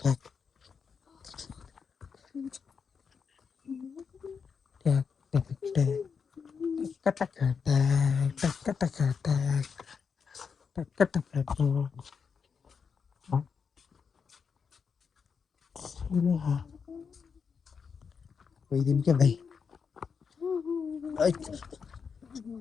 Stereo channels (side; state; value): right; quieter; 6.0 dB